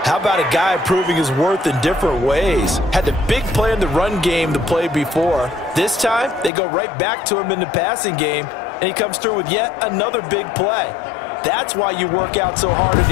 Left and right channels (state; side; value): drops out; right; at 6.5 s